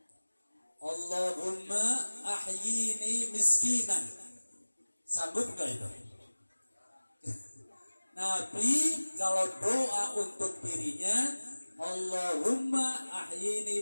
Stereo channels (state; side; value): inverted; both; correlation -1.00